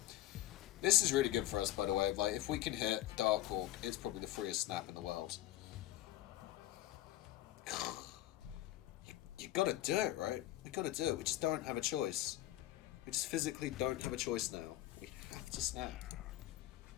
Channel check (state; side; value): quieter; right; 14.8 dB